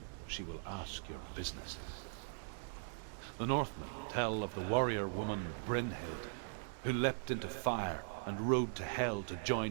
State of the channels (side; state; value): left; silent; digital silence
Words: She will ask your business. The Northmen tell of the warrior woman Brynhild, who leapt into fire and rode to hell to